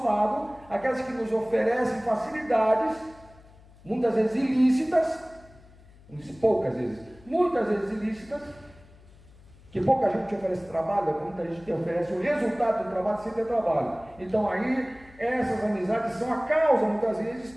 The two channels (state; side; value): noise; left; hum, 24 dB below the sound